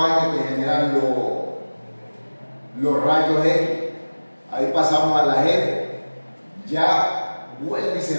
que generan los rayos X. Ahí pasamos a la F. Ya vuelve y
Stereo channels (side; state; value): both; inverted; correlation -1.00